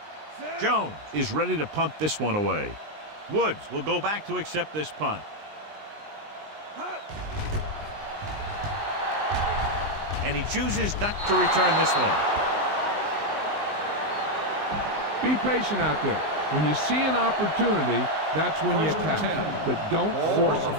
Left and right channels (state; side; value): late; left; 19 ms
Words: Jones is ready to punt this one away. Woods will go back to accept this punt. And he chooses not to return this one. Be patient out there. When you see an opportunity, that's when you attack. But don't force it.